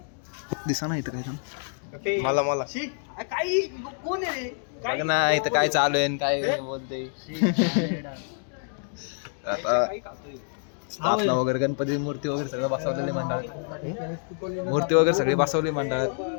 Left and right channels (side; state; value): right; silent; 60 dB below the other